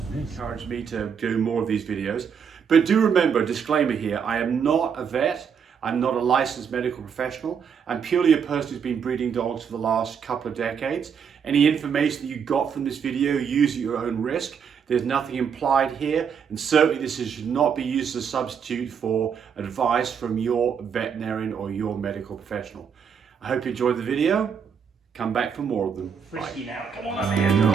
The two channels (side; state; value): left; quieter; 7.0 dB